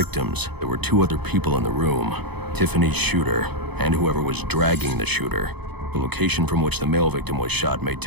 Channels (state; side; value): late; left; 0.98 ms